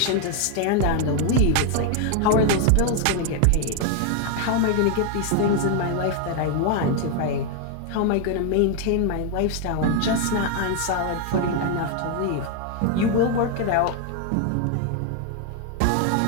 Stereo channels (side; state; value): both; different; correlation 0.01